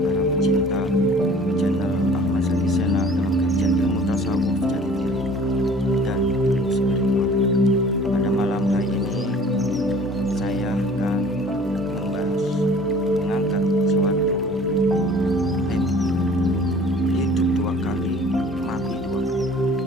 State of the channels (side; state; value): both; normal; correlation 0.49